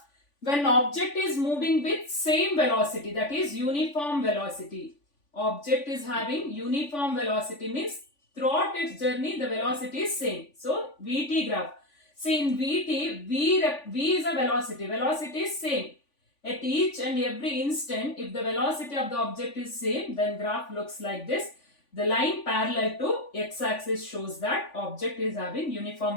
when object is moving with same velocity, that is uniform velocity. Object is having uniform velocity means throughout its journey the velocity is same. So VT graph. See in VT, V is a velocity. Velocity is same. At each and every instant, if the velocity of the object is same, then graph looks like this. The line parallel to x-axis shows that object is having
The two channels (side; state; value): right; late; 3.5 ms